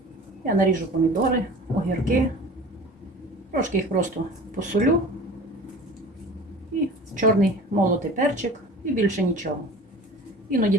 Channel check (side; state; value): both; normal; correlation 0.40